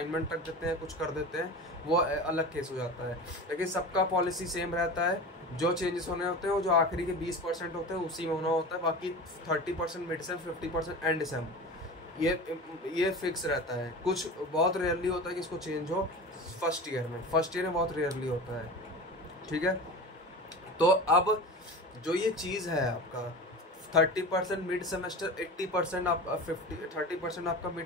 तक देते हैं, कुछ कर देते हैं, वो अलग केस हो जाता है, लेकिन सबका पॉलिसी सेम रहता है। जो चेंजेस होने होते हैं वो जो आखिरी के 20% होते हैं उसी में होना होता है, बाकी 30% मिड सेम, 50% एंड सेम, ये फिक्स रहता है। कुछ बहुत रेयरली होता है कि इसको चेंज हो फर्स्ट ईयर में बहुत रेयरली होता है, ठीक है। तो अब जो ये चीज़ है आपका 30% मिड सेमेस्टर, 80% आप 30% आपका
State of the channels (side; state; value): both; normal; correlation 0.32